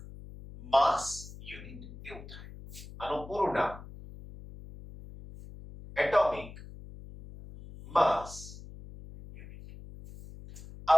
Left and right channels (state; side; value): noise; left; hum, 15 dB below the sound